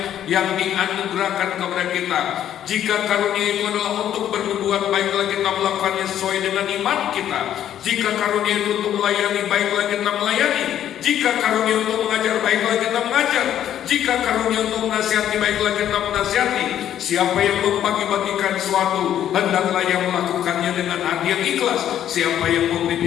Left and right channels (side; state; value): right; quieter; 10.8 dB